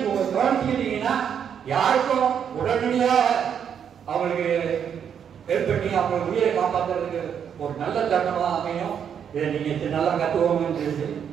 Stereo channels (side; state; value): left; quieter; 8.1 dB